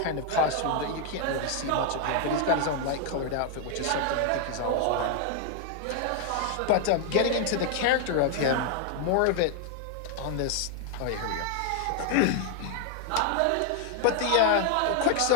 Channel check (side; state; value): both; different; correlation 0.00